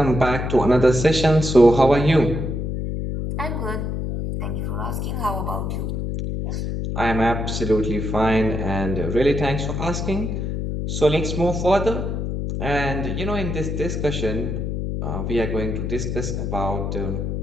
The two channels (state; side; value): noise; left; hum, 2 dB below the sound